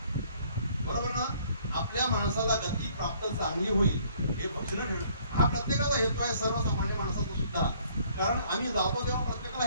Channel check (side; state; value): both; inverted; correlation -0.61